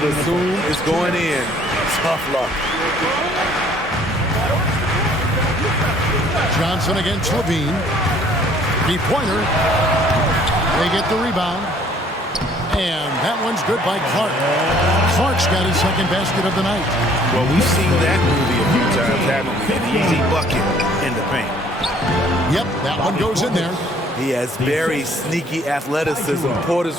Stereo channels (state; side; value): normal; both; correlation 0.58